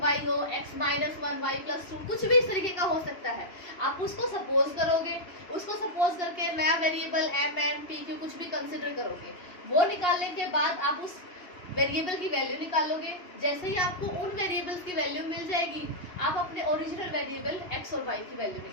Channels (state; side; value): late; right; 2.7 ms